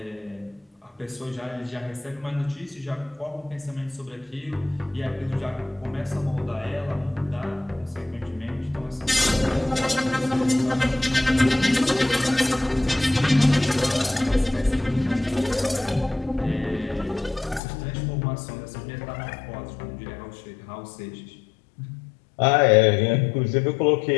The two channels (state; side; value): drops out; right; at 17.6 s